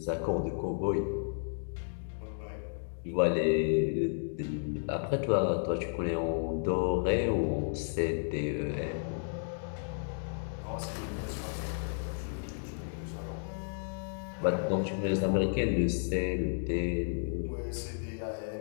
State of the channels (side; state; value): right; silent; digital silence